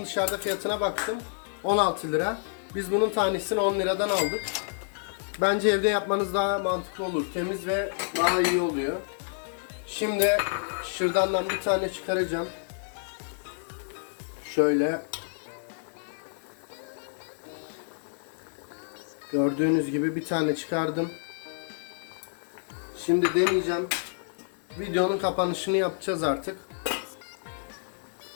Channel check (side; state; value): right; silent; 59 dB below the other